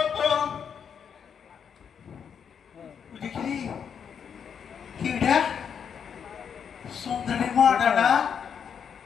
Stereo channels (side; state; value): right; quieter; 7.4 dB